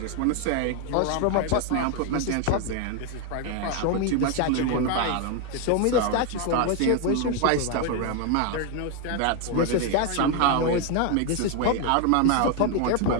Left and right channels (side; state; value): both; different; correlation 0.01